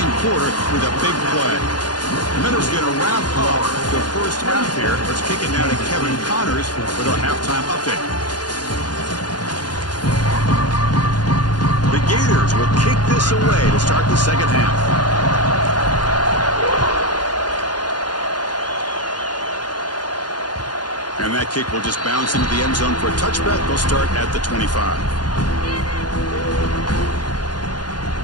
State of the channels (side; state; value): right; late; 0.70 ms